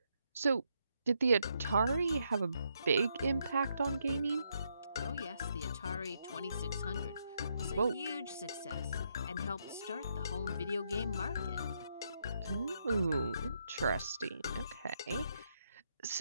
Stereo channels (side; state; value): both; inverted; correlation -0.77